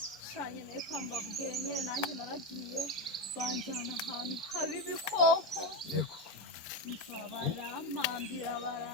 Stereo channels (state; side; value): normal; both; correlation 0.12